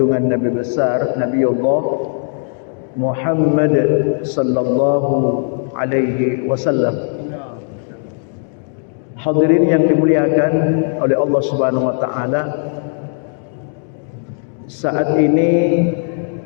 Nabi besar Nabiullah Muhammad sallallahu alaihi wasallam. Hadirin yang dimuliakan oleh Allah Subhanahu wa taala, saat ini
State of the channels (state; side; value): silent; right; 59 dB below the other